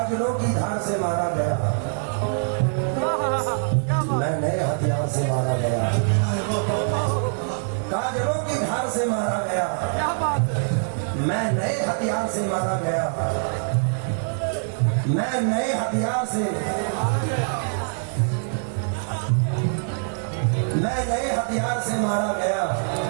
की धार से मारा गया, मैं नए हथियार से मारा गया। काजलों की धार से मारा गया, मैं नए हथियार से मारा गया। मैं नए हथियार से, मैं नए हथियार से मारा गया।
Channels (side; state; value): left; silent; 61 dB below the other